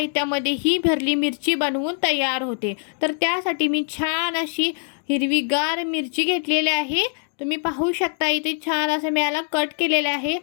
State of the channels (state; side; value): silent; right; 57 dB below the other